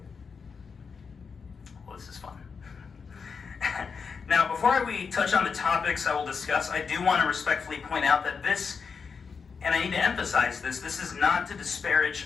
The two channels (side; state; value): right; quieter; 5.6 dB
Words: Well, this is fun. Now, before we touch on the topics I will discuss, I do want to respectfully point out that this, and I need to emphasize this, this is not to disparage